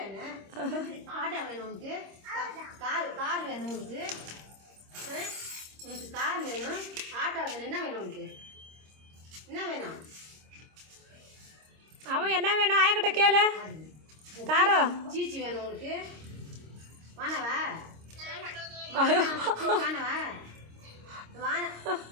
ஆட்டோ வேணும் உனக்கு? கார் வேணும் உனக்கு? உனக்கு கார் வேணும், ஆட்டோ வேணும். என்ன வேணும் உனக்கு? என்ன வேணும்? அவன் என்ன வேணும் ஆயக்கிட்ட கேளு. காரோ சீச்சி வேணும் உனக்கு? வானவா வானவா வான.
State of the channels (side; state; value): left; late; 26 ms